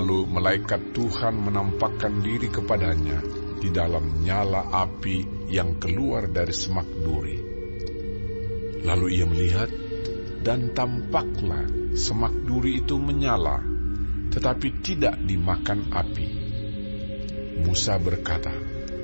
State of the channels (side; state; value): both; inverted; correlation -1.00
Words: malaikat Tuhan menampakkan diri kepadanya di dalam nyala api yang keluar dari semak duri. Lalu ia melihat, dan tampaklah semak duri itu menyala, tetapi tidak dimakan api. Musa berkata,